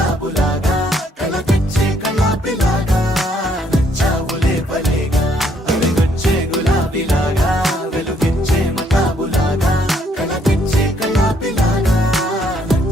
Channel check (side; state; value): both; normal; correlation 0.68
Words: కల తెచ్చే కళ్ళాపిలాగా నచ్చావులే భలేగా అలిగొచ్చే గులాబీలాగా వెలుగిచ్చే మతాబులాగా కల తెచ్చే కళ్ళాపిలాగా